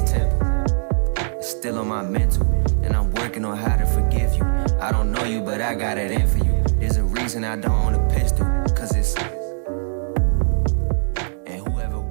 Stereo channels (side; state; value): left; silent; 65 dB below the other